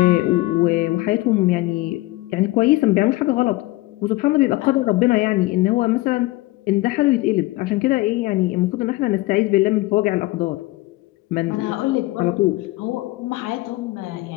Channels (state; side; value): quieter; right; 19.7 dB